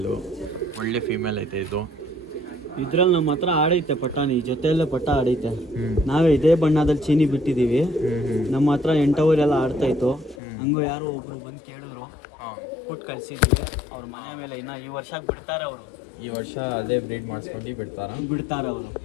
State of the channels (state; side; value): drops out; right; at 10.4 s